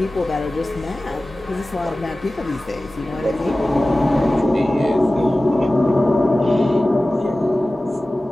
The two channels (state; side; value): normal; both; correlation 0.97